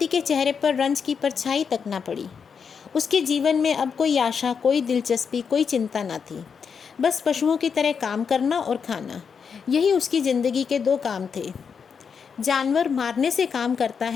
के चेहरे पर रंज की परछाई तक ना पड़ी। उसके जीवन में अब कोई आशा, कोई दिलचस्पी, कोई चिंता ना थी। बस पशुओं की तरह काम करना और खाना, यही उसकी ज़िंदगी के 2 काम थे। जानवर मारने से काम करता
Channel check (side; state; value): right; quieter; 6.3 dB